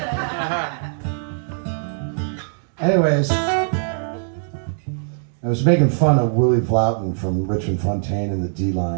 Anyways, I was making fun of Willie Vloughton from Richmond Fontaine and the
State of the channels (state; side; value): silent; left; digital silence